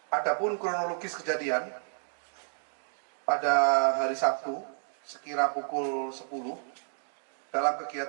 Adapun kronologis kejadian pada hari Sabtu sekira pukul 10 dalam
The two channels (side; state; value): left; silent; digital silence